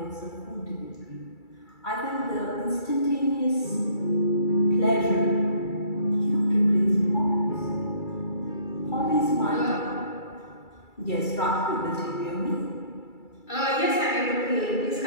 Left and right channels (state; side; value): late; right; 2.3 ms